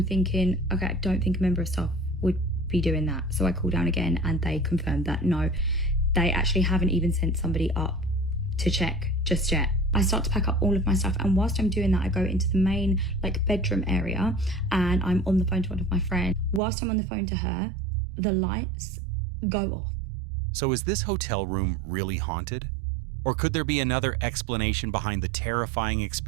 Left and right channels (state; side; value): drops out; left; at 16.6 s